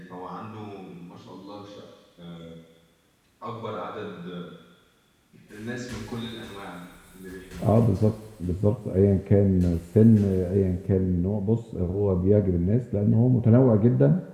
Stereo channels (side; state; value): both; identical; correlation 1.00